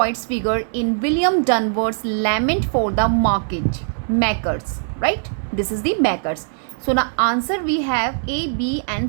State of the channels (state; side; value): silent; left; digital silence